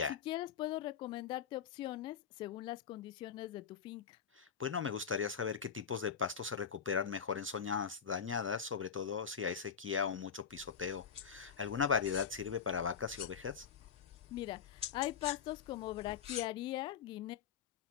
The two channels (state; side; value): quieter; right; 7.2 dB